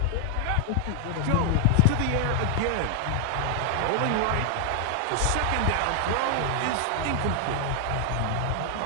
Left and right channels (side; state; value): both; different; correlation 0.00